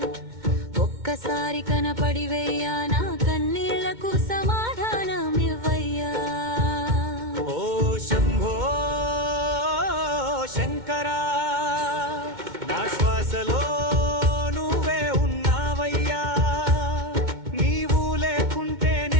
ఒక్కసారి కనపడివయ్యా నా కన్నీళ్లకు సమాధానమివ్వయ్యా ఓ శంభో శంకరా నా శ్వాసలో నువ్వే ఉన్నావయ్యా నీవు లేకుంటే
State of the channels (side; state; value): left; late; 2.2 ms